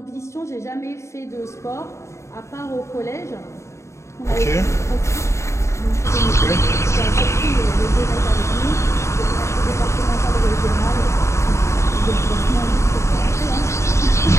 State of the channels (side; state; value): right; late; 0.14 ms